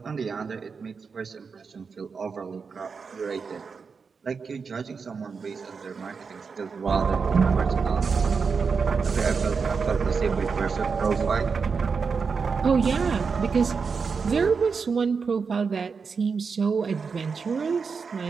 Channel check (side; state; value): left; quieter; 5.4 dB